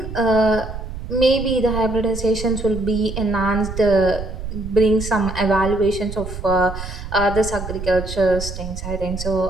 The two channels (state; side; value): noise; right; rumble, 8 dB below the sound